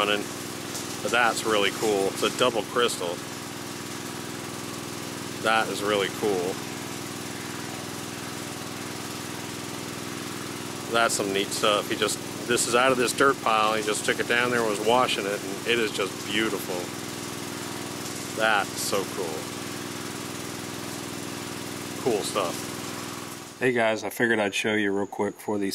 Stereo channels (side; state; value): both; identical; correlation 1.00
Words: But that's really cool. It's a double crystal. That is really cool. That's some neat stuff. This is out of this dirt pile. He just took it down there and was washing it, and it is just beautiful. That's so cool. Cool stuff. Hey guys, I figured I'd show you real quick before